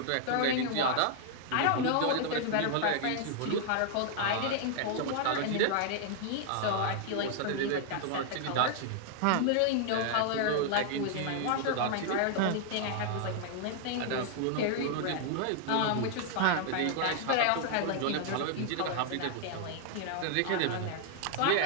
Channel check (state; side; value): different; both; correlation 0.00